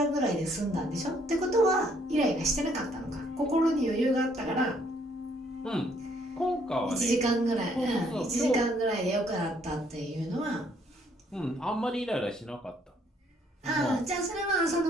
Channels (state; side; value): normal; both; correlation 0.67